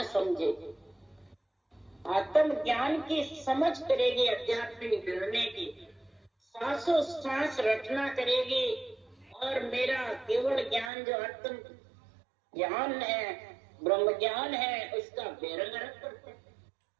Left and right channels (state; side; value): drops out; left; at 10.9 s